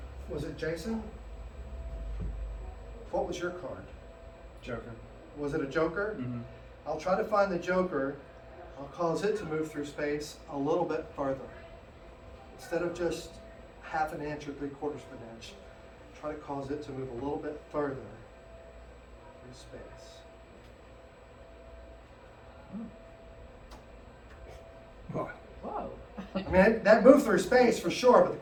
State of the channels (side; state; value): both; identical; correlation 1.00